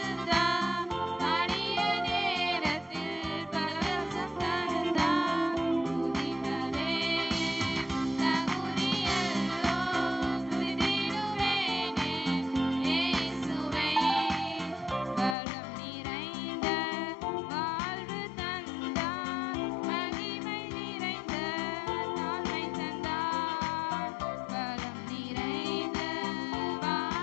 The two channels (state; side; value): drops out; right; at 15.4 s